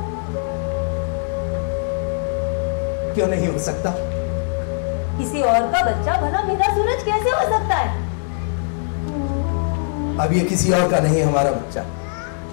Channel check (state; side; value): silent; right; 65 dB below the other